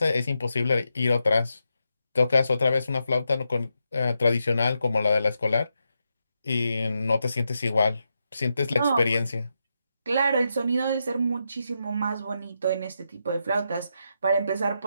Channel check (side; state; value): both; inverted; correlation -0.85